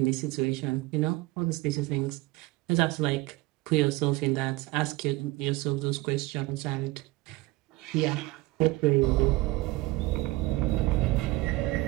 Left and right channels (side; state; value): left; quieter; 20.1 dB